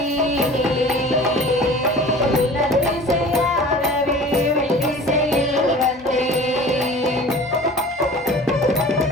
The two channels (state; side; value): normal; both; correlation 0.42